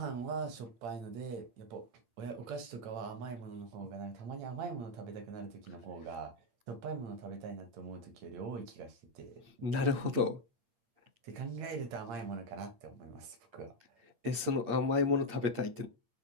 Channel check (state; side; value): late; left; 8.7 ms